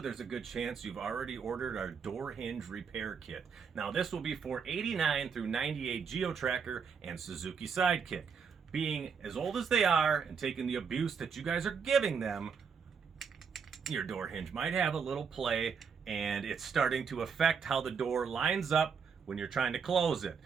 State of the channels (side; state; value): left; quieter; 6.2 dB